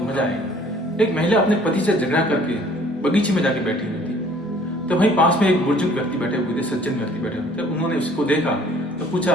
मजा आएगा। एक महिला अपने पति से झगड़ा करके बगीचे में जाके बैठी हुई थी। तो वहीं पास में एक बुजुर्ग व्यक्ति बैठे हुए थे, सज्जन व्यक्ति बैठे हुए थे। उन्होंने उसको देखा तो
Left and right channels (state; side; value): normal; both; correlation 0.55